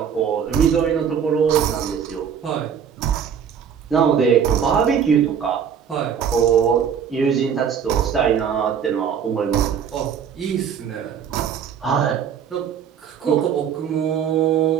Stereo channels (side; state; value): left; quieter; 7.8 dB